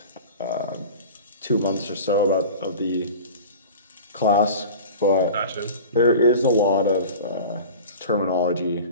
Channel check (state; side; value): inverted; both; correlation -0.37